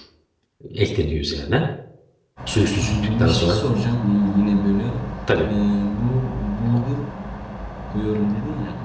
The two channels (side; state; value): both; identical; correlation 1.00